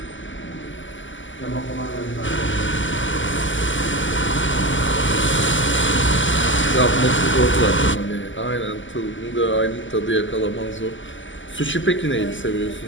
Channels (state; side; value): late; right; 0.55 ms